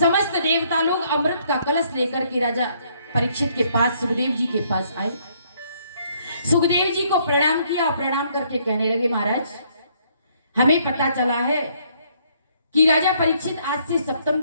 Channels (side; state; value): both; inverted; correlation -0.67